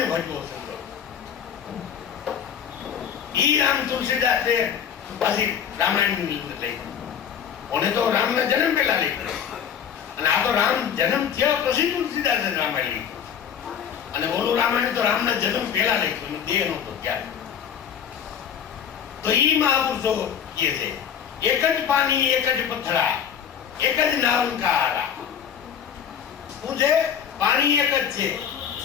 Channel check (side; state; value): right; quieter; 8.4 dB